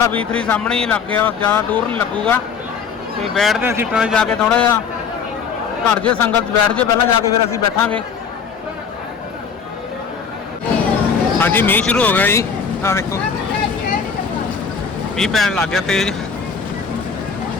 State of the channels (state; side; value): quieter; right; 6.2 dB